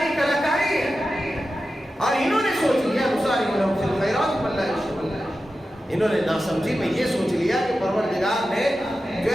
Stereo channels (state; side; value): normal; both; correlation 0.92